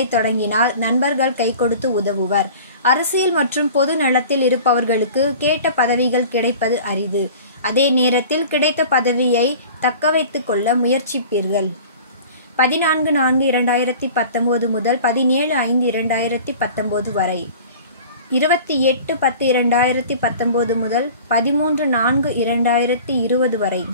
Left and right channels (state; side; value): inverted; both; correlation -0.42